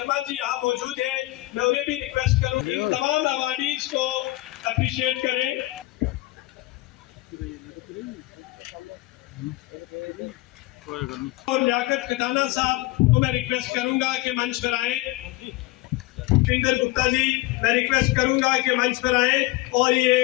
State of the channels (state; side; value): quieter; right; 19.5 dB